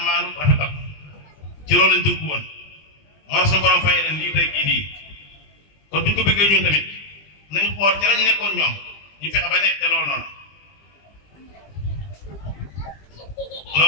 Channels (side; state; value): right; late; 20 ms